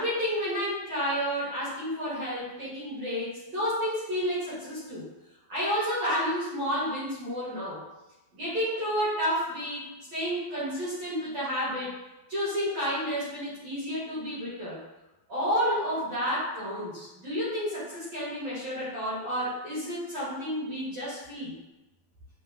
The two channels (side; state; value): left; late; 12 ms